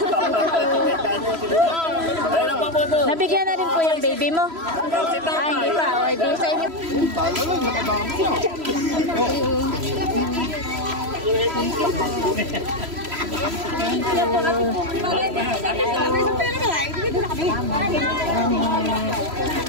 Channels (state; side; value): late; left; 3.0 ms